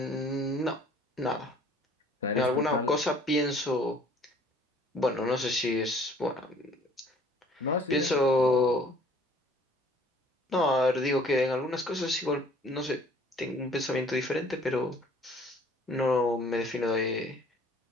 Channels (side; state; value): both; normal; correlation 0.55